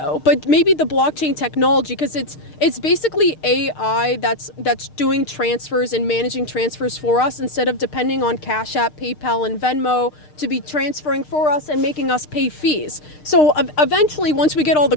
but maybe the blockchain technology, because it's basically AI that's doing transfers and managing transfers for us instead of depending on Cash App, PayPal, and Venmo to be transferring for us and making us pay fees. So eventually, once we get all the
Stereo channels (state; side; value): late; right; 6.6 ms